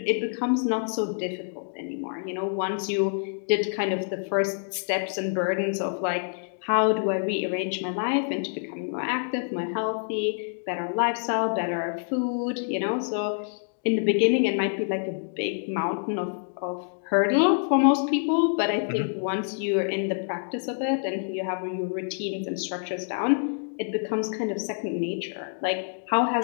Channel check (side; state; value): right; silent; digital silence